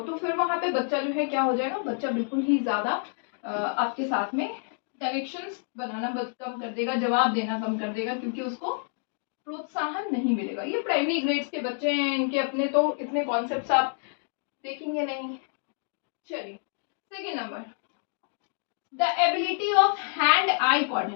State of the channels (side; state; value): right; silent; 57 dB below the other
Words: फिर वहां पे बच्चा जो है क्या हो जाएगा, बच्चा बिल्कुल ही ज्यादा आपके साथ में कनेक्शंस बनाना कम कर देगा, जवाब देना कम कर देगा, क्योंकि उसको प्रोत्साहन नहीं मिलेगा। ये प्राइमरी ग्रेड्स के बच्चे हैं, इनके अपने तो इतने कॉन्सेप्ट्स आप देखेंगे नहीं। चलिए second number, the ability of hand eye